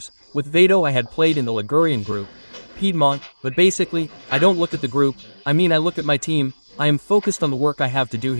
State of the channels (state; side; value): inverted; both; correlation -1.00